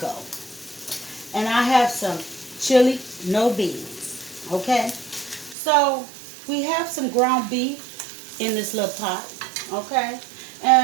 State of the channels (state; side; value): drops out; left; at 5.6 s